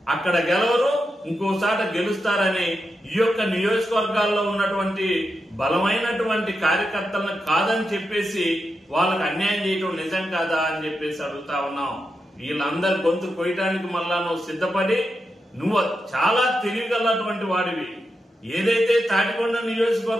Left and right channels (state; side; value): normal; both; correlation 0.87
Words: అక్కడ గెలవరు, ఇంకోసాట గెలుస్తారని ఈ యొక్క నియోజకవర్గాల్లో ఉన్నటువంటి బలమైనటువంటి కార్యకర్తలను కాదని చెప్పేసి వాళ్ళకి అన్యాయం చేయటం నిజం కాదా అని చెప్పేసి అడుగుతా ఉన్నాం. వీళ్ళందరి గొంతు కొయ్యటానికి మళ్ళా నువ్వు సిద్ధపడి నువ్వు చాలా తెలియగలటువంటి వాడివి. ఏదైతే తాటికొండ